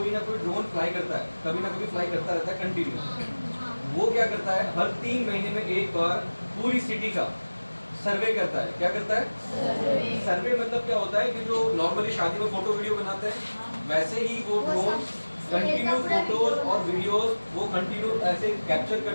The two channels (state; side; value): inverted; both; correlation -1.00